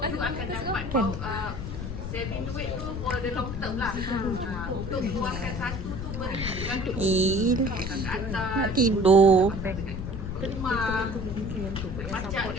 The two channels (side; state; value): left; noise; rumble, 6 dB below the sound